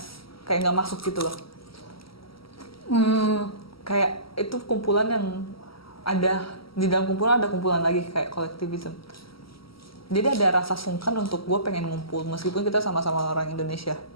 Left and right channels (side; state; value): right; late; 0.75 ms